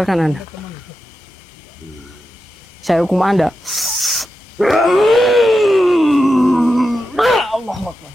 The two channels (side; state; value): both; normal; correlation 0.90